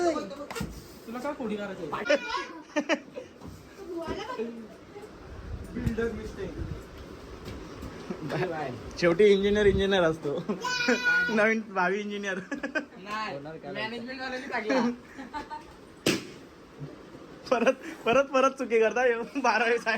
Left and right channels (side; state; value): both; identical; correlation 1.00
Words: तुला काय कोडी करायचं. Builder mistake. शेवटी इंजिनियर असतो. नवीन भावी इंजिनियर. मॅनेजमेंट वाल्यांनी टाकला. परत परत परत चुकी करता. 12वी